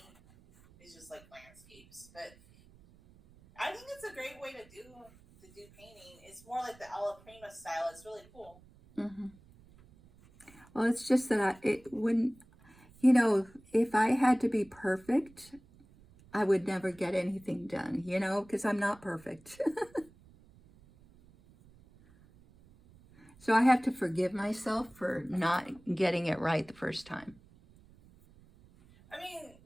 is just like landscapes. But I think it's a great way to do painting. It's more like the Alla Prima style. It's really cool. Hmm. Well, it's just that it when if I had to be perfect, I would never get anything done. Because I'm not perfect. So I have to forgive myself for not getting it right the first time. I mean,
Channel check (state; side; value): noise; right; rumble, 26 dB below the sound